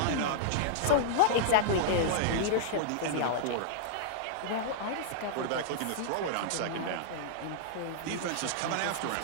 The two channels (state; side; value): different; both; correlation -0.02